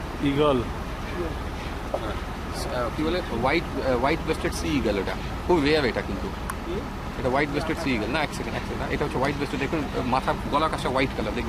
ইগল কি বলে হোয়াইট ব্রেস্টেড সি ইগল, এটা খুব রেয়ার। এটা কিন্তু এটা হোয়াইট ব্রেস্টেড সি ইগল না, এক সেকেন্ড এটা হচ্ছে হোয়াইট ব্রেস্টেড। দেখুন মাথা গলার কাছে হোয়াইট কালার,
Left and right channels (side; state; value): both; identical; correlation 1.00